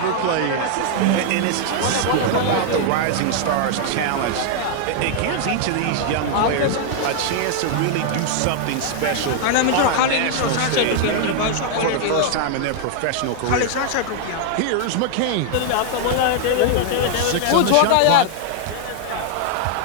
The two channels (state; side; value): different; both; correlation 0.00